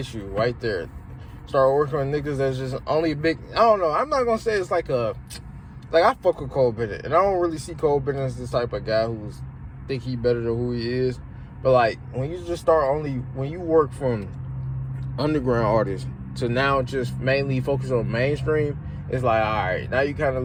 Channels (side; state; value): both; identical; correlation 1.00